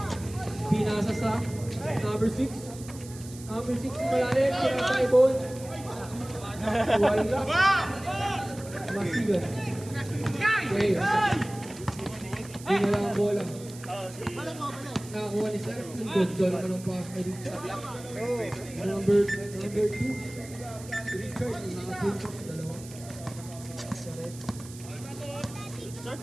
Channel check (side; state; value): right; noise; hiss, 17 dB below the sound